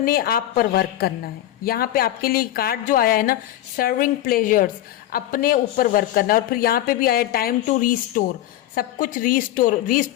आप पर वर्क करना है। यहाँ पे आपके लिए कार्ड जो आया है ना, सर्विंग प्लेजर्स, अपने ऊपर वर्क करना है। और फिर यहाँ पे भी आया टाइम टू रीस्टोर, सब कुछ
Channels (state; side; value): quieter; right; 13.5 dB